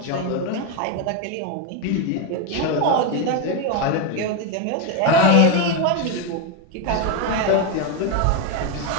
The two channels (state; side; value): different; both; correlation 0.02